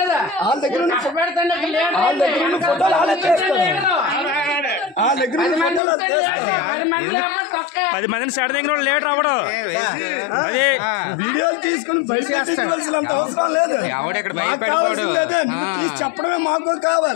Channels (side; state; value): right; drops out; at 5.8 s